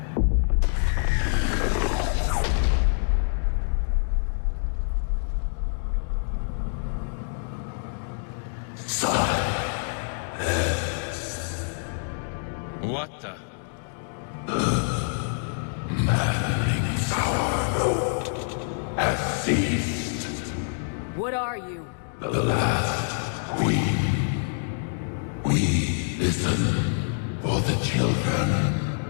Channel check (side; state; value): right; silent; digital silence